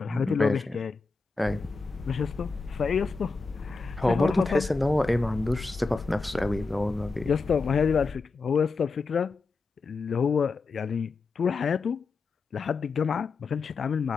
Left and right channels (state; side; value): quieter; right; 4.1 dB